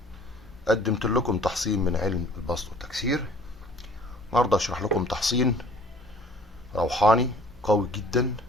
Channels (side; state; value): both; normal; correlation 0.52